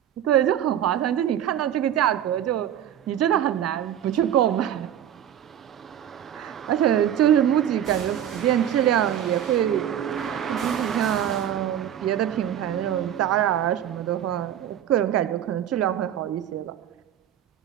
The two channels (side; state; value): left; quieter; 10.5 dB